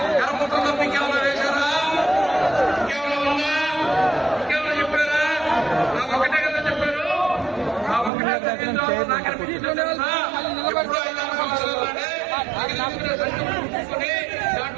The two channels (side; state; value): left; drops out; at 8.1 s